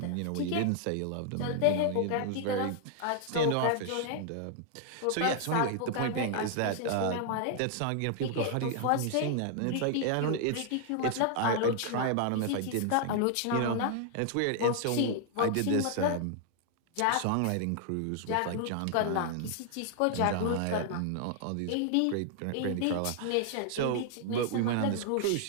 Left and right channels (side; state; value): both; different; correlation 0.00